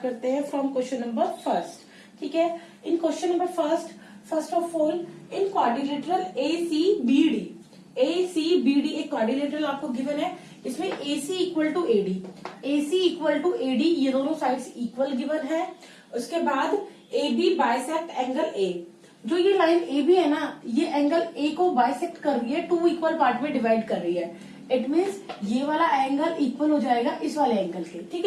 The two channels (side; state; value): both; identical; correlation 1.00